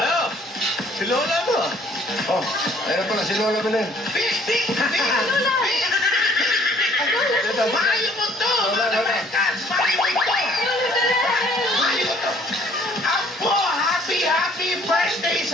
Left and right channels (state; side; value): normal; both; correlation 0.58